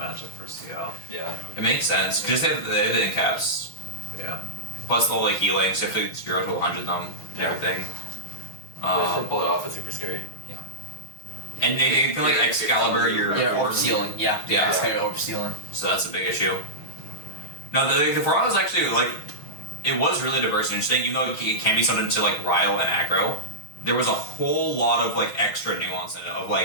for CL. Yeah. It makes sense, because they have the in caps. Yeah. Plus the whole like healing, so you have to 0 to 100 them and everything. Just to pull it off is super scary. And they feel like Excalibur, you're Orb Stealing. Yeah. Yeah. Orb Stealing. So that's a big issue. No, the format was actually like, it was really diverse and interesting, even though it can be something to like Ryle and Aggro. There was a whole lot of like extra nuance in it, of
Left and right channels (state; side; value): late; right; 6.3 ms